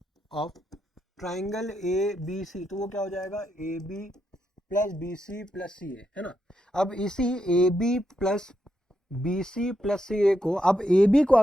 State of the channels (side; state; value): both; normal; correlation 0.82